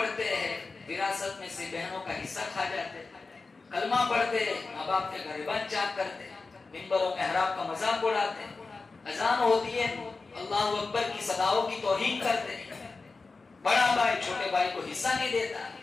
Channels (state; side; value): quieter; right; 4.0 dB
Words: ہیں وراثت میں سے بہنوں کا حصہ کھا جاتے ہیں، کلمہ پڑھتے ہیں ماں باپ کے غریبان چاک کرتے ہیں، منبروں محراب کا مذاق اڑاتے ہیں، اذان ہوتی ہے اللہ اکبر کی صداؤں کی توہین کرتے ہیں، بڑا بھائی چھوٹے بھائی کو حصہ نہیں دیتا،